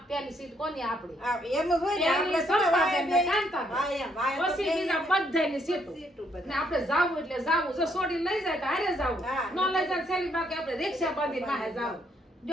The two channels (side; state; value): both; normal; correlation 0.71